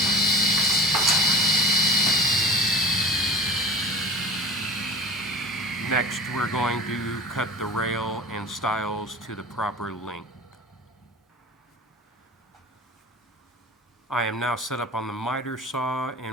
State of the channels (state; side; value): normal; both; correlation 0.35